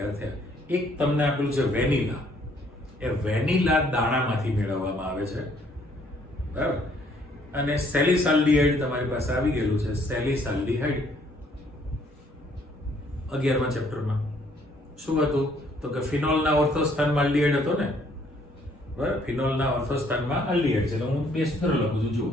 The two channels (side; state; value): both; normal; correlation 0.64